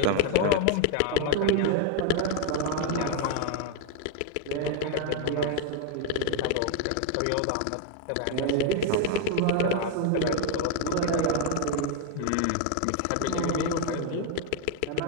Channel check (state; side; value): different; both; correlation 0.01